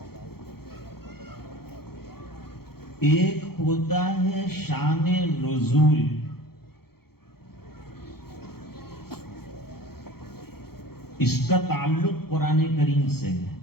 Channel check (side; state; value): right; late; 0.95 ms